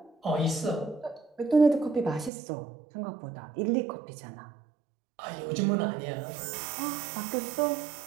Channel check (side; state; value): left; drops out; at 2.3 s